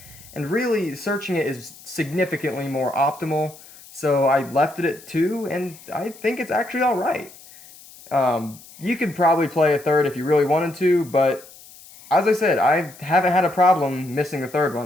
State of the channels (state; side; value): noise; left; hiss, 21 dB below the sound